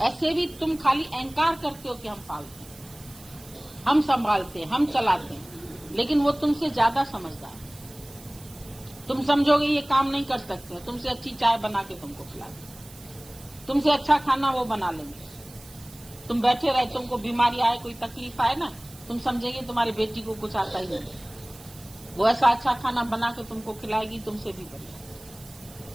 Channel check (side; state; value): right; noise; hiss, 22 dB below the sound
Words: ऐसे भी तुम खाली अहंकार करते हो कि हम पालते हैं, हम संभालते हैं, हम चलाते हैं, लेकिन वो तुमसे ज्यादा समझदार है। तुम समझोगे ये काम नहीं कर सकते, तुमसे अच्छी चाय बना के तुमको खिला देंगे, तुमसे अच्छा खाना वो बना लेंगे। तुम बैठे रहे, तुमको बीमारी आए, कोई तकलीफ आए ना, तुम समझेंगे तुम्हारी बेटी को कुछ आता ही नहीं, वो ऐसा अच्छा खाना बना के तुमको खिलाएगी, तुमसे भी बढ़िया,